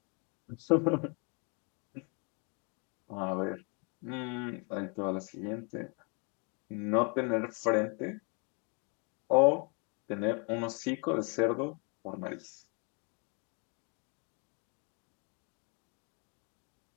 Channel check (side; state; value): right; quieter; 35.4 dB